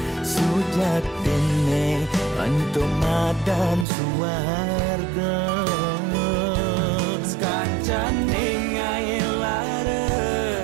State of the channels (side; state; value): left; drops out; at 3.9 s